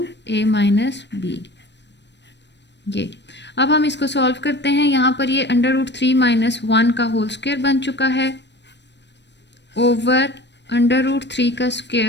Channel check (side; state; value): right; late; 0.51 ms